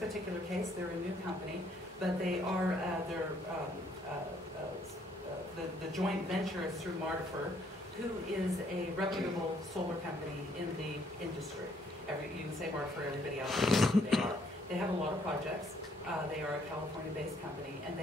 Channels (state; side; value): normal; both; correlation 0.67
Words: case, they're a new company, but they are, the joint venture is through Martifer, who is a reputable solar company in the industry. You can say Martifer, everybody else knows who they are. They have a lot of projects. They are a California-based company, and